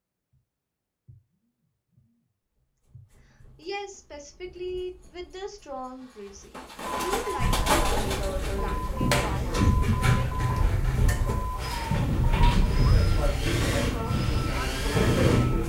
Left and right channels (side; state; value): both; identical; correlation 1.00